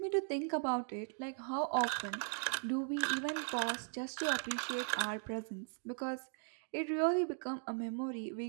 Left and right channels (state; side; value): silent; left; 52 dB below the other